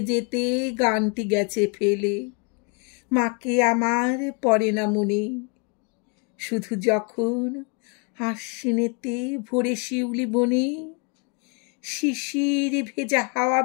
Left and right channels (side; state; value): right; quieter; 35.3 dB